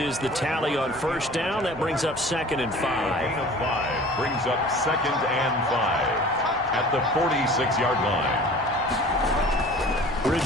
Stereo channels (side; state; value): both; normal; correlation 0.44